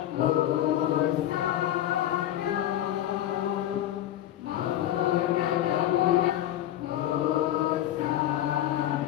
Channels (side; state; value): right; quieter; 12.6 dB